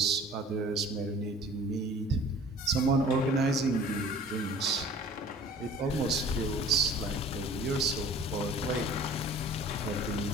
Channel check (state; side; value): normal; both; correlation 0.47